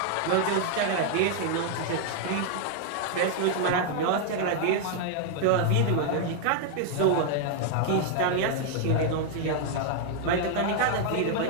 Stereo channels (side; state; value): both; different; correlation 0.00